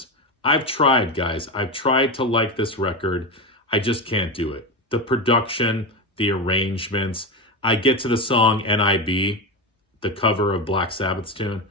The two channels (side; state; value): both; normal; correlation 0.17